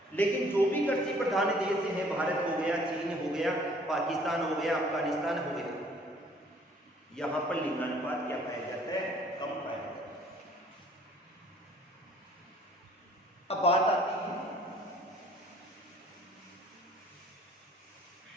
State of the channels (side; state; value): both; normal; correlation 0.57